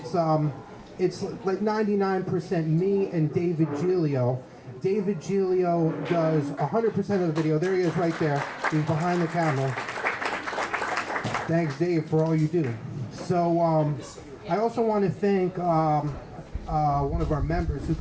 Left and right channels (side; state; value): both; identical; correlation 1.00